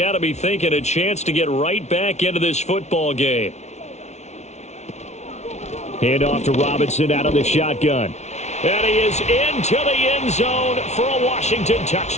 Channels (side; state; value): right; late; 0.32 ms